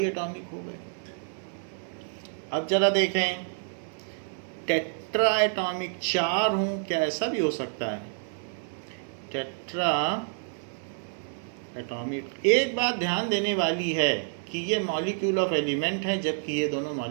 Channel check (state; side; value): silent; left; 59 dB below the other